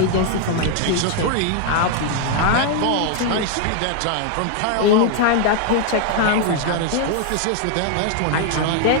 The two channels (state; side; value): different; both; correlation 0.00